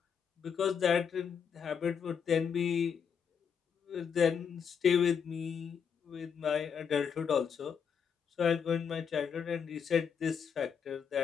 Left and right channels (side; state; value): right; quieter; 7.0 dB